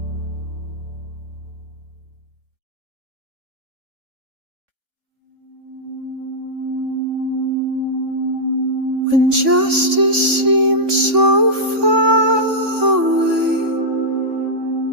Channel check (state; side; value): late; left; 3.5 ms